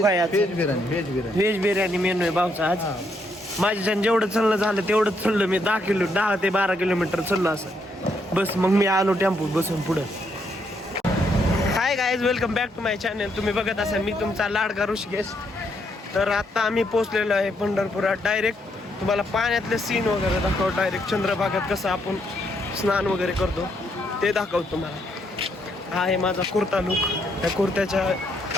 काय आज? व्हेज बिर्याणी मेनू आहे भाऊचा आज. माझ्याच्यानं जेवढं चाललं झालं तेवढंच चाललं मी. 10 ते 12 किलोमीटर चाललो असं. बस मग मी आलो टेम्पो बसून पुढं. Hi guys, welcome back to my channel. तुम्ही बघत असाल मी तुमचा लाडका ऋषिकेश. तर आता आम्ही पोहोचलेलो आहे पंढरपुरात. डायरेक्ट तुम्हाला पाण्यातले सीन वगैरे दाखवतो. डायरेक्ट चंद्रभागात कसं आपण स्नान वगैरे करतो ते दाखवतो तुम्हाला. हा आहे माझा कुर्ता लुक. त्या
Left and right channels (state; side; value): normal; both; correlation 0.75